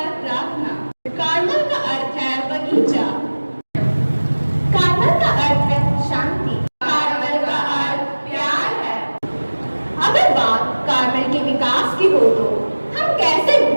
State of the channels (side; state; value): both; inverted; correlation -1.00